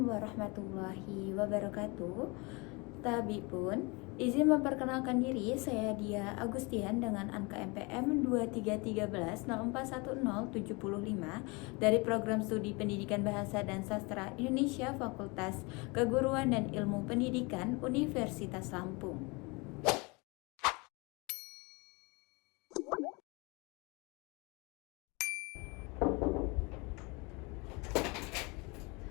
warahmatullahi wabarakatuh. Tabi pun, izin memperkenalkan diri, saya Dia Agustian dengan angka MPM 2313041075 dari Program Studi Pendidikan Bahasa dan Sastra Indonesia Fakultas Keguruan dan Ilmu Pendidikan Universitas Lampung.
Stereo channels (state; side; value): quieter; right; 27.8 dB